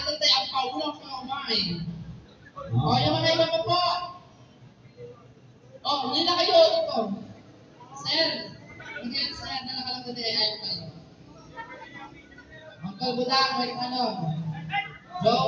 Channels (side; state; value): both; identical; correlation 1.00